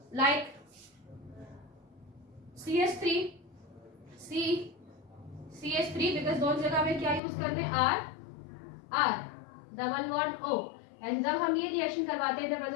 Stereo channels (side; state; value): right; drops out; at 7.2 s